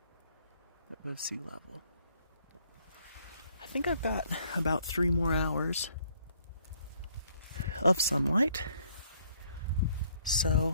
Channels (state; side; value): inverted; both; correlation -0.66